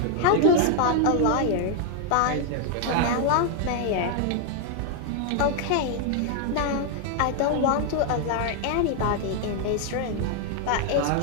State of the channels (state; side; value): different; both; correlation 0.00